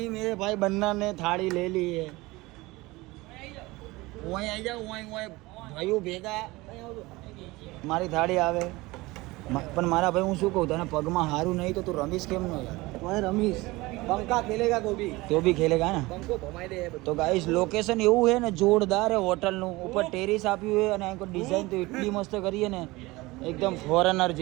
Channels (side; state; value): left; quieter; 21.2 dB